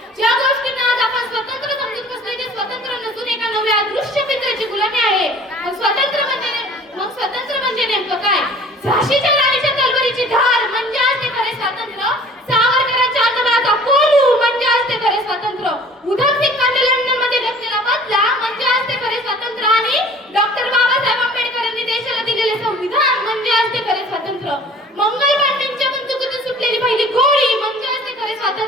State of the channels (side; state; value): both; normal; correlation 0.48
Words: ज्या गोष्टींना आज आपण स्वतंत्र समजून बसलोय ते स्वतंत्र नसून एका नव्या दृश्य पित्राची गुलामी आहे. मग स्वतंत्र म्हणजे नेमकं काय? झाशीच्या राणीच्या तलवारीची धार म्हणजे असते खरे स्वातंत्र्य. सावरकरांच्या आत्मबळाचा कोलू म्हणजे असते खरे स्वातंत्र्य. उधम सिंगांनी लंडन मध्ये घेतलेला बदला म्हणजे असते खरे स्वातंत्र्य. आणि डॉक्टर बाबासाहेब आंबेडकर यांनी देशाला दिलेले संविधान म्हणजे असते खरे स्वातंत्र्य. मंगल पांडेंच्या बंदुकीतून सुटलेली पहिली गोळी म्हणजे असते खरे